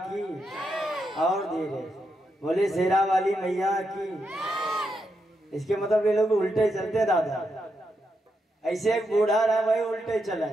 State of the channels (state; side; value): normal; both; correlation 0.83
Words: और धीरे, बोले शेरा वाली मैया की। इसके मतलब ये लोग उल्टे चलते दादा। ऐसे एक बूढ़ा रहा वही उल्टे चला,